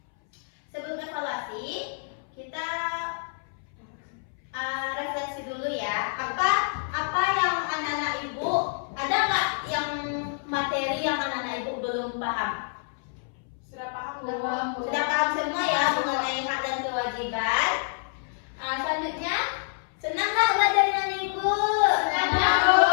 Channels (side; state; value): right; silent; 60 dB below the other